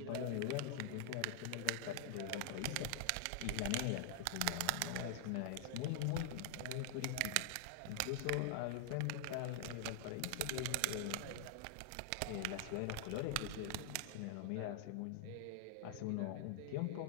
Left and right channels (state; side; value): different; both; correlation -0.01